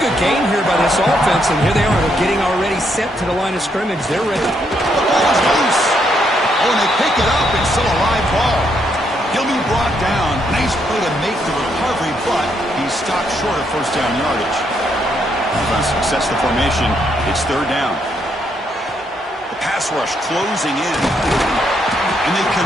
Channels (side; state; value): both; normal; correlation 0.75